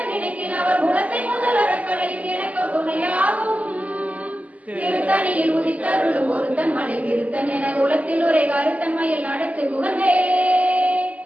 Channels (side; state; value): left; late; 0.072 ms